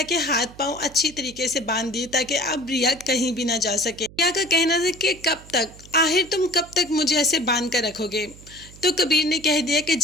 के हाथ पांव अच्छी तरीके से बांध दिए ताकि अब रिया कहीं भी ना जा सके। रिया का कहना था कि कब तक, आखिर तुम कब तक मुझे ऐसे बांध कर रखोगे? तो कबीर ने कह दिया कि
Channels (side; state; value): right; noise; hum, 20 dB below the sound